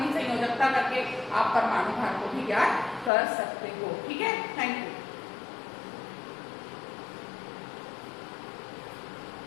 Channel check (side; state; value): right; drops out; at 3.1 s